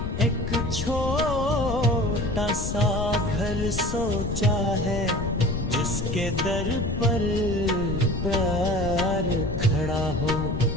एक छोटा सा घर सोचा है, जिसके दर पर प्यार खड़ा हो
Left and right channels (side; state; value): left; noise; rumble, 3 dB below the sound